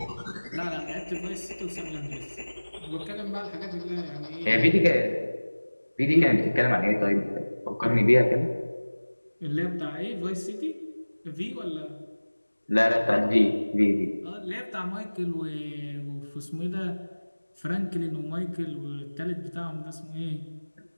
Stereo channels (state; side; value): inverted; both; correlation -1.00